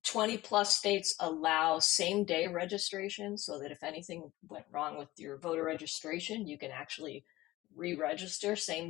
20 plus states allow same day registration so that if anything went wrong with your voter registration, you can actually re register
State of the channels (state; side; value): quieter; right; 17.7 dB